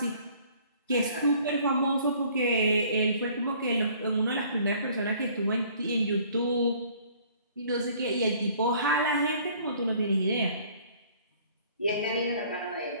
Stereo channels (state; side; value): inverted; both; correlation -0.56